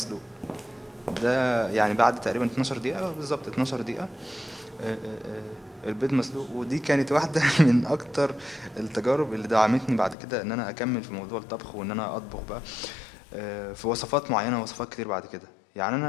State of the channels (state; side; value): drops out; right; at 10.2 s